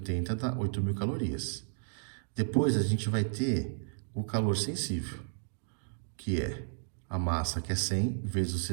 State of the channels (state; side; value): silent; left; digital silence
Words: dá 8.000 calorias. Depois, a gente vai ter o calor sensível, que é a massa, que é 100, vezes o